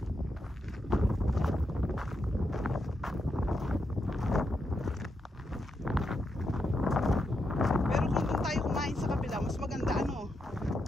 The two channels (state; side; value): normal; both; correlation 0.83